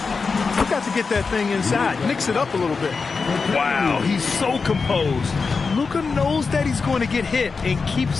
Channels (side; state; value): right; quieter; 4.7 dB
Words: you've got to get that thing inside. Mix it up a little bit. Wow, he's so composed. Luka knows that he's going to get hit and